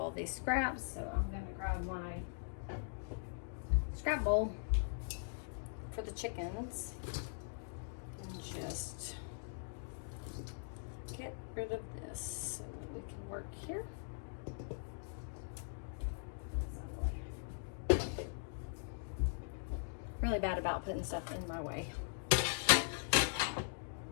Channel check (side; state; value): right; silent; digital silence